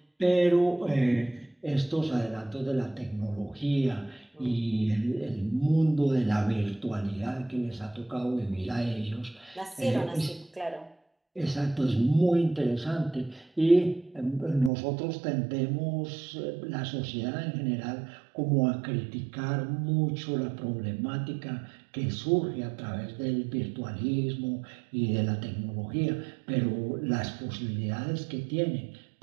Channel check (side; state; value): left; drops out; at 14.7 s